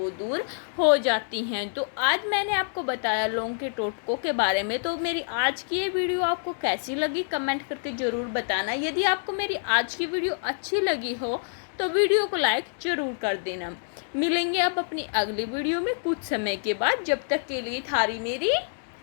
दूर हो जाती हैं। तो आज मैंने आपको बताया लौंग के टोटकों के बारे में। तो मेरी आज की ये वीडियो आपको कैसी लगी कमेंट करके ज़रूर बताना। यदि आपको मेरी आज की वीडियो अच्छी लगी हो तो वीडियो को लाइक ज़रूर कर देना। मिलेंगे अब अपनी अगली वीडियो में कुछ समय के बाद। जब तक के लिए थारी मेरी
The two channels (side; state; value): right; silent; digital silence